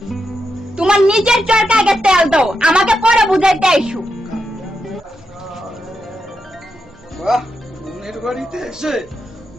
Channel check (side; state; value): both; normal; correlation 0.85